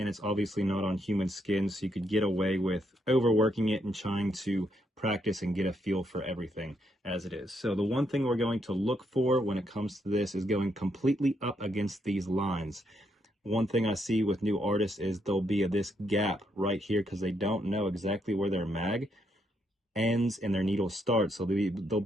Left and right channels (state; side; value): normal; both; correlation 0.77